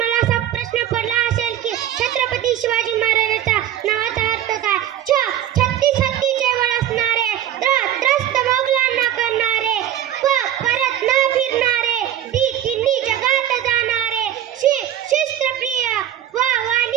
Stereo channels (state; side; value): quieter; left; 11.3 dB